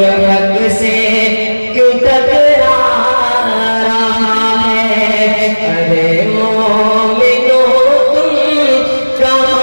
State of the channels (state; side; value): inverted; both; correlation -1.00